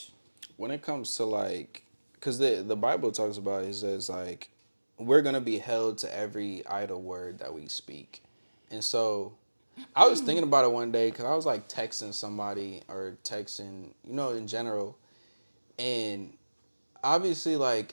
when it comes to like, because the Bible talks about it says like we're gonna be held to every idle word that we speak, and so I was thinking about it one day because I was like texting somebody or texting in general, and obviously like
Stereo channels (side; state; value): both; inverted; correlation -1.00